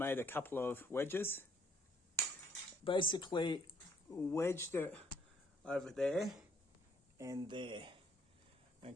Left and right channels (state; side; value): normal; both; correlation 0.67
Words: a couple of wedges. Basically wedged it over there and there,